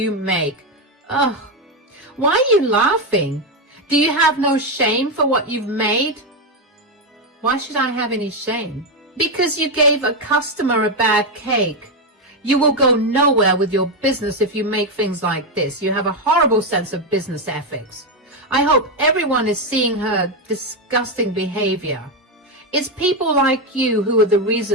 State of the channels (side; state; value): both; normal; correlation 0.07